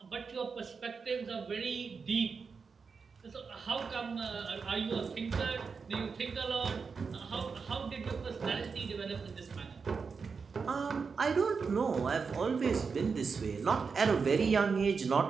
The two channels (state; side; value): quieter; left; 5.3 dB